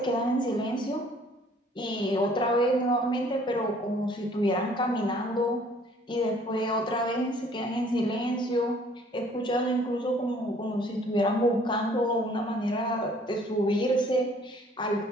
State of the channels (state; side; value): normal; both; correlation 0.58